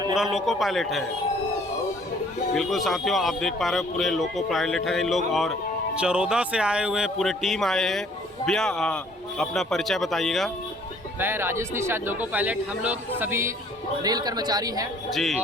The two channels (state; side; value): normal; both; correlation 0.58